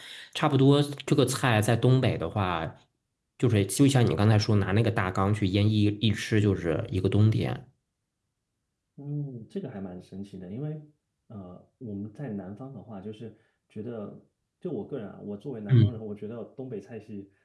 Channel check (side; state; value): both; identical; correlation 1.00